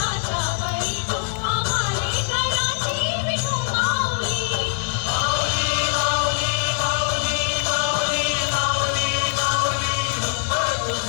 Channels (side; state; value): right; silent; digital silence